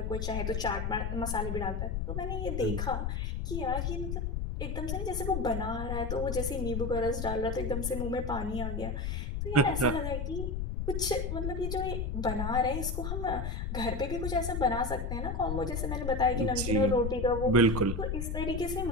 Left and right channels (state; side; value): noise; left; rumble, 2 dB below the sound